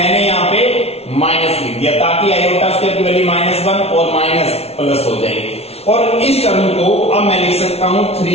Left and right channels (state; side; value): late; right; 0.30 ms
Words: यहां पे माइनस लिख दिया ताकि आयोटा स्क्वायर की वैल्यू -1 और माइनस प्लस हो जाएगी. और इस टर्म को अब मैं लिख सकता हूं